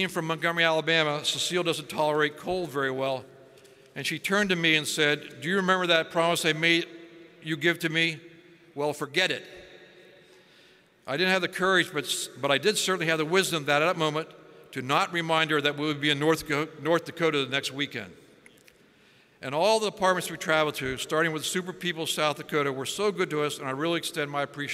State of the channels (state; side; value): identical; both; correlation 1.00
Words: from Montgomery, Alabama, Cecile doesn't tolerate cold very well, and she turned to me and said, "Do you remember that promise I made you give to me? Well, forget it." I didn't have the courage, but I did certainly have the wisdom that at that moment to not remind her that we would be in North Dakota the next weekend. And all the departments we traveled to, starting with Super People South Dakota, were so good to us, and I really extend my